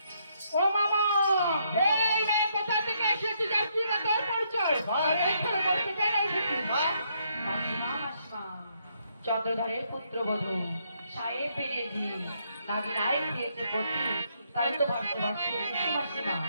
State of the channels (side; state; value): both; inverted; correlation -0.74